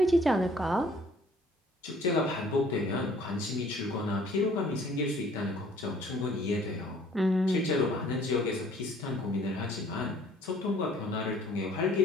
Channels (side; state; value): both; normal; correlation 0.57